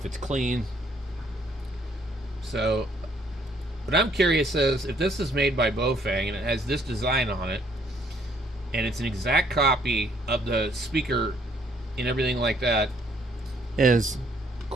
it's clean. So what I'm curious is if this is made by baofeng and it has this design on it, and it's an exact copy of the speaker and everything like that, is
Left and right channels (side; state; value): both; normal; correlation 0.65